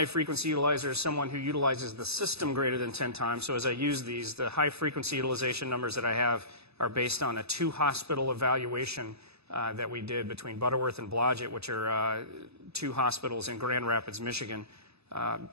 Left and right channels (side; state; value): left; late; 0.79 ms